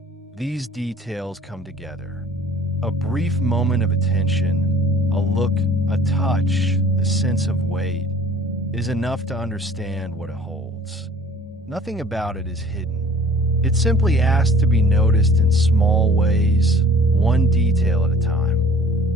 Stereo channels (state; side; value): normal; both; correlation 0.50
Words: these details come together. A brief moment of attention, a look, a touch, a sense of weight, is enough to understand what it holds. Nothing about it is hidden. It simply asks to be noticed in small ways, one detail at a time.